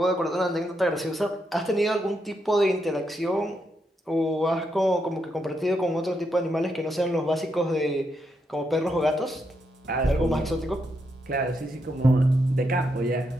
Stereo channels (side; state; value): both; normal; correlation 0.81